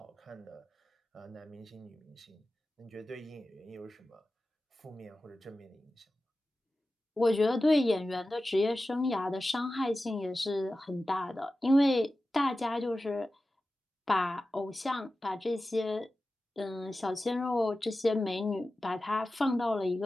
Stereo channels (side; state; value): both; normal; correlation 0.94